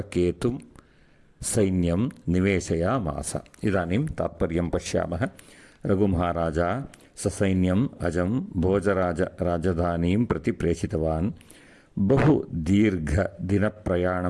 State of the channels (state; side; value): identical; both; correlation 1.00